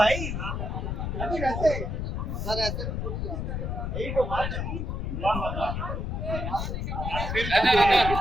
अभी रहते हैं सर ऐसे यही तो बात है।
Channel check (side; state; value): left; noise; rumble, 2 dB below the sound